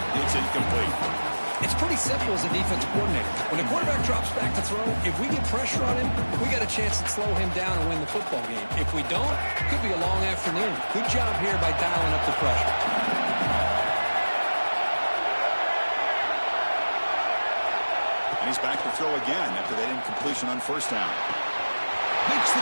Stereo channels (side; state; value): both; inverted; correlation -1.00